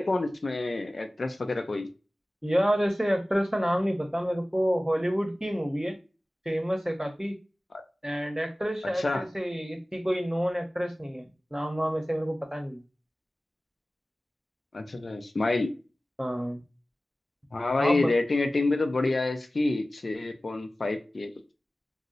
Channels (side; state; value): both; normal; correlation 0.97